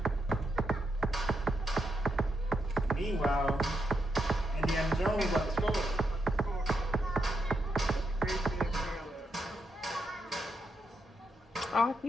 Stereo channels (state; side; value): normal; both; correlation 0.82